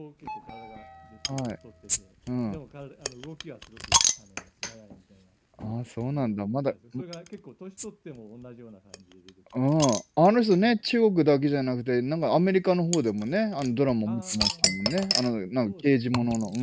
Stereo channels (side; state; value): both; identical; correlation 1.00